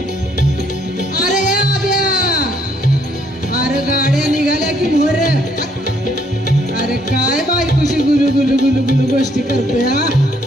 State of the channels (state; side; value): normal; both; correlation 0.68